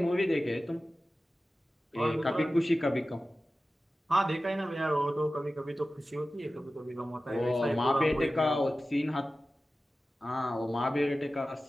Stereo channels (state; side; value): normal; both; correlation 0.95